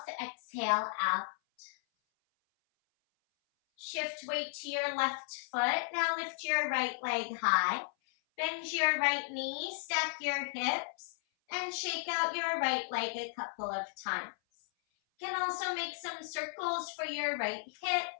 exhale out. Shift weight to your left foot. Now lift your right leg high. Bend your right knee, stack your hips, and shake out your right leg a couple of times. You can also make some circles for your right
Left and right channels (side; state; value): right; silent; 55 dB below the other